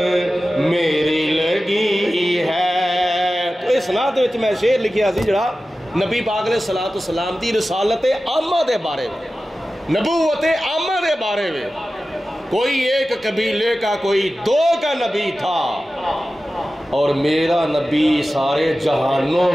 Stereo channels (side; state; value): both; normal; correlation 0.95